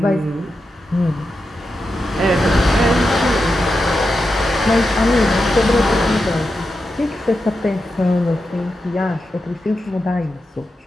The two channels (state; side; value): normal; both; correlation 0.89